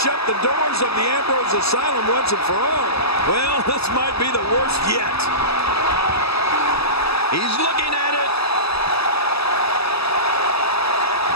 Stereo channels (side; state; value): right; late; 0.78 ms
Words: the doors of the Ambrose Asylum once and for all. Well, this might be the worst yet. He's looking at it.